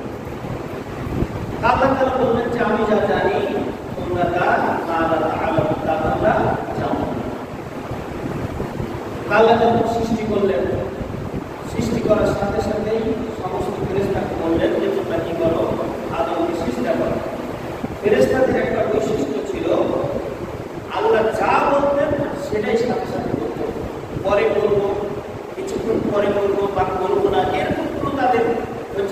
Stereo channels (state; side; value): identical; both; correlation 1.00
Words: আল্লাহ তাআলা বললেন যে আমি যা জানি তোমরা তা তোমরা জানো। আল্লাহ যখন সৃষ্টি করলেন, সৃষ্টি করার সাথে সাথেই সমস্ত ফেরেশতাকে বললেন যে তোমরা কি করো, আদমকে সৃষ্টি করো। ফেরেশতাদের একটা বৈশিষ্ট্য ছিল, আল্লাহ যা বলতেন সেটাই সাথে সাথে করতো। পরে করবো, কিছুক্ষণ পরে করবো বা করবো না, এরকম কোনো তাদের